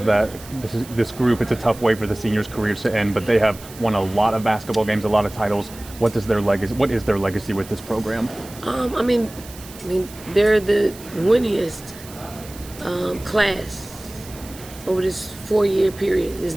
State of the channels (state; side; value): noise; right; hiss, 18 dB below the sound